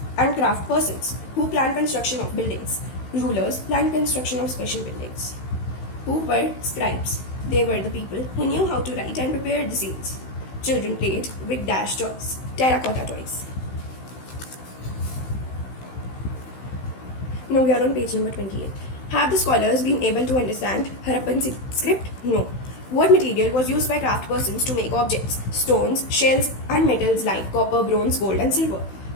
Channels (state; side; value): late; right; 16 ms